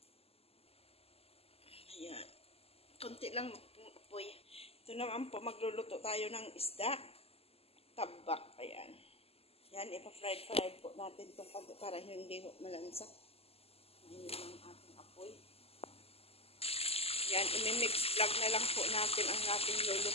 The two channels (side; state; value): right; late; 0.29 ms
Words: Ayan. Konti lang apoy. Ito naman po, magluluto tayo ng isda. Tabak. Ayan. Yan, ipa-fried po natin itong konti para hindi malansa. Ayan lang ating apoy. Yan, imimix vlog na lang po natin ang ating